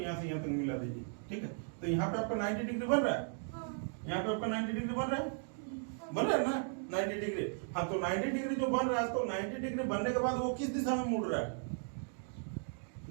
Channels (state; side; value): silent; left; 54 dB below the other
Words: से यहाँ तक मिला दीजिए, ठीक है, तो यहाँ पे आपका 90 डिग्री बन रहा है, यहाँ पे आपका 90 डिग्री बन रहा है ना, 90 डिग्री, हाँ, तो 90 डिग्री जो बन रहा है, तो 90 डिग्री बनने के बाद वो किस दिशा में मुड़ रहा है,